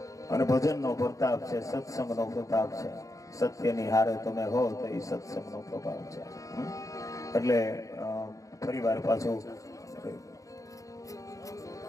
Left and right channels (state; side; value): late; right; 0.16 ms